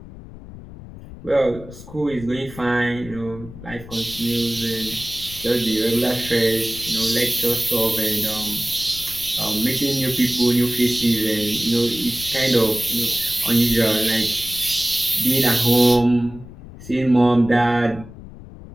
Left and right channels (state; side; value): noise; left; rumble, 16 dB below the sound